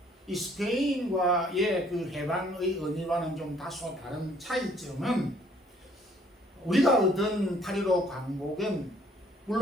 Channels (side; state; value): both; normal; correlation 0.61